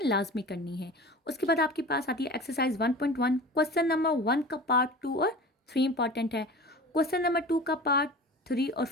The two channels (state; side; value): normal; both; correlation 0.37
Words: लाजमी करनी है। उसके बाद आपके पास आती है एक्सरसाइज 1.1। क्वेश्चन नंबर 1 का पार्ट 2 और 3 इंपॉर्टेंट है। क्वेश्चन नंबर 2 का पार्ट 3 और